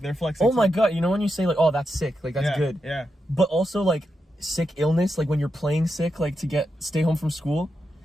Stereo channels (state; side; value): normal; both; correlation 0.86